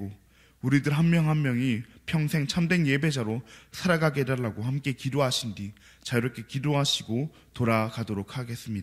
우리들 한 명 한 명이 평생 참된 예배자로 살아가게 해달라고 함께 기도하신 뒤 자유롭게 기도하시고 돌아가도록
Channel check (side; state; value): both; identical; correlation 1.00